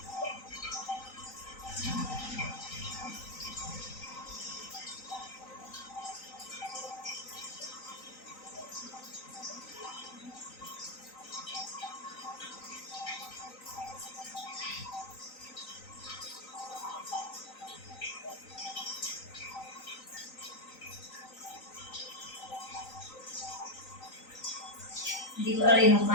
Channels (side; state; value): right; late; 3.9 ms